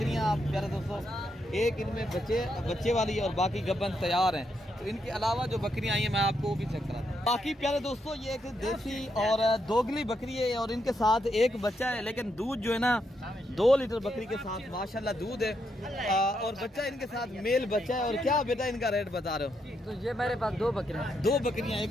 आप प्यारे दोस्तों एक इनमें बच्चे वाली है और बाकी गब्बन तैयार हैं। तो इनके अलावा जो बकरियां आई हैं मैं आपको वो भी चेक कराता हूँ। बाकी प्यारे दोस्तों ये एक देसी और दोगली बकरी है और इनके साथ एक बच्चा है, लेकिन दूध जो है ना 2 लीटर बकरी के साथ माशाल्लाह दूध है और बच्चा इनके साथ मेल बच्चा है। और क्या बेटा इनका रेट बता रहे हो? तो ये मेरे पास 2 बकरियां, एक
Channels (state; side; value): normal; both; correlation 0.80